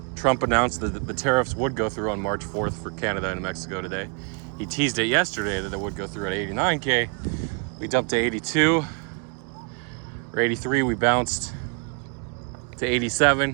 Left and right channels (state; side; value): quieter; left; 36.8 dB